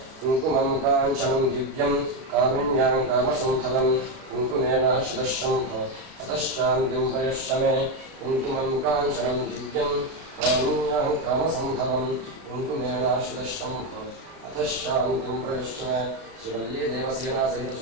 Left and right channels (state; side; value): late; left; 33 ms